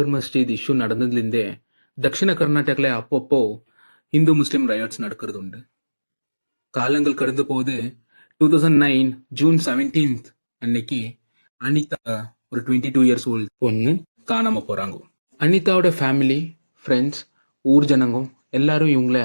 மஸ்ஜித் issue நடந்ததுலேருந்தே தக்ஷிண கர்நாடகால அப்பப்போ இந்து முஸ்லிம் riots நடக்கிறது உண்டு. காலங்கள் கடந்து போது 2009 ஜூன் 17th அன்னைக்கு அனிதா ஒரு 22 இயர்ஸ் ஓல்டு பொண்ணு காணாம போறாங்க. அனிதாவோட ஃபேமிலி, ஃப்ரெண்ட்ஸ், ஊர் ஜனங்க எல்லாரும் இவங்கள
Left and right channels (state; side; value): inverted; both; correlation -1.00